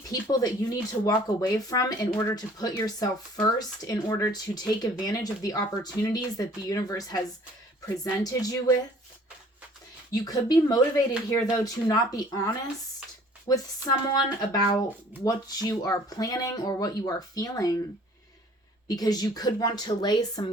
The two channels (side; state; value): both; normal; correlation 0.53